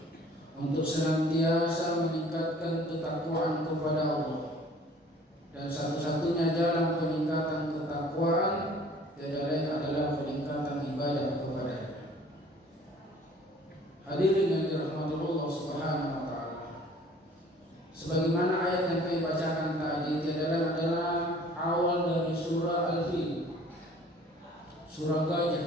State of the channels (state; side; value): normal; both; correlation 0.52